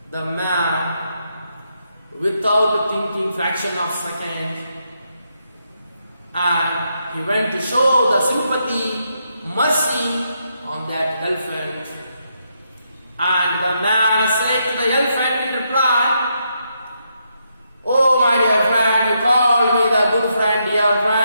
without thinking fraction of second, and he went to show the sympathy, mercy on that elephant. And the man said to the elephant in reply, oh my dear friend, you called me the good friend, dear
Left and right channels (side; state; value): both; inverted; correlation -0.80